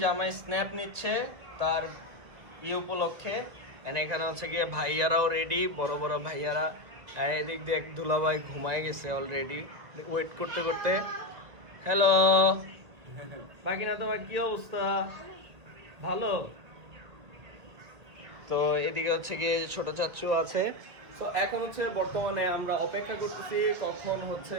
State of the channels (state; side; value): late; left; 1.9 ms